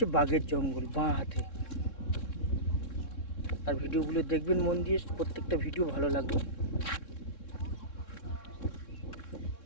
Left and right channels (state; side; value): late; right; 3.6 ms